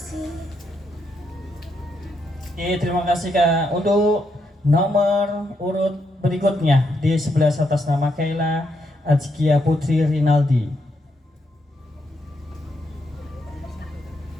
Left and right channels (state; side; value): normal; both; correlation 0.79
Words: Oke, terima kasih Kak. Untuk nomor urut berikutnya di sebelah atas nama Kayla Azkia Putri Rinaldi.